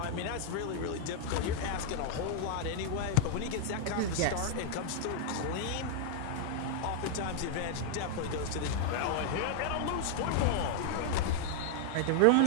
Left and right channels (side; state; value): both; different; correlation 0.00